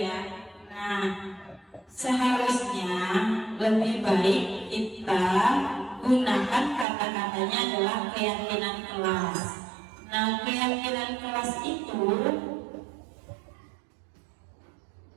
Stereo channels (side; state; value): left; drops out; at 6.9 s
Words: ya. Nah, seharusnya lebih baik kita gunakan kata-katanya adalah keyakinan kelas. Nah, keyakinan kelas itu